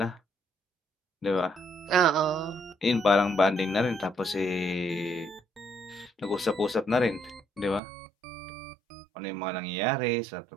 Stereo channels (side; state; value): left; drops out; at 7.8 s